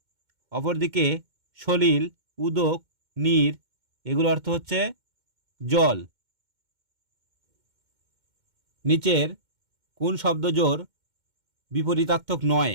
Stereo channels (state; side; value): late; left; 2.1 ms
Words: অপরদিকে সলিল, উদক, নীর এগুলো অর্থ হচ্ছে জল। নিচের কোন শব্দজোড় বিপরীতার্থক নয়?